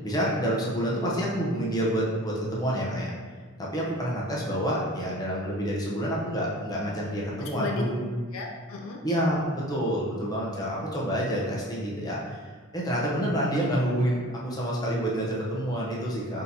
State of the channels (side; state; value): both; normal; correlation 0.43